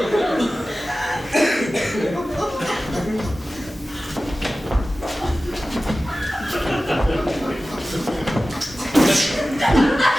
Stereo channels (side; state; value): both; normal; correlation 0.96